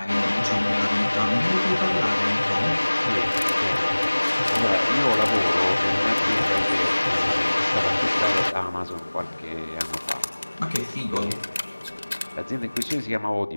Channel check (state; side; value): inverted; both; correlation -1.00